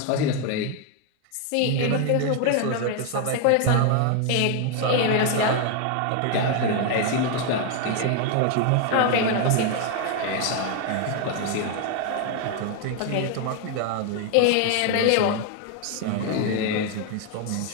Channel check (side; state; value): both; different; correlation 0.01